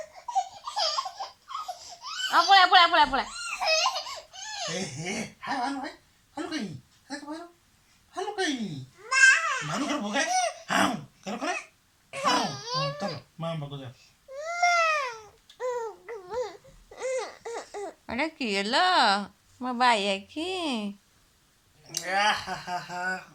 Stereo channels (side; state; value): both; identical; correlation 1.00